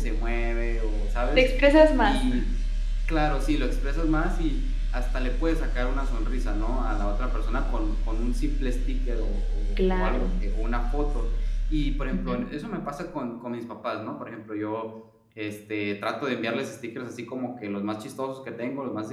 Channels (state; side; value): identical; both; correlation 1.00